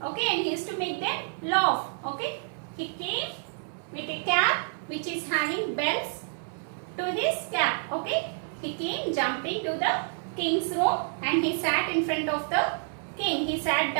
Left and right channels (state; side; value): silent; left; digital silence